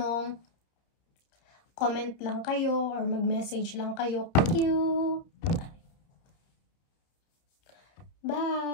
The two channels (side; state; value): right; late; 31 ms